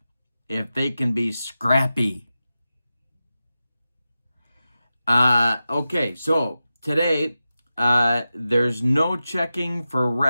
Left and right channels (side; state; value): both; inverted; correlation -0.93